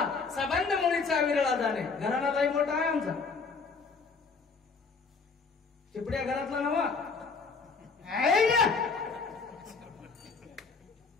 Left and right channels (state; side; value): quieter; right; 4.7 dB